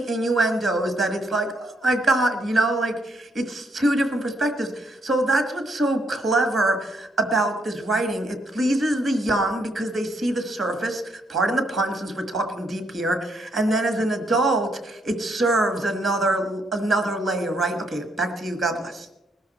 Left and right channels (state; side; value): normal; both; correlation 0.74